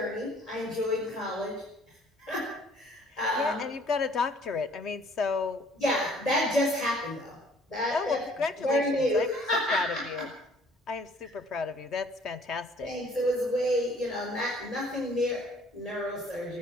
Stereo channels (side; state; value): both; normal; correlation 0.57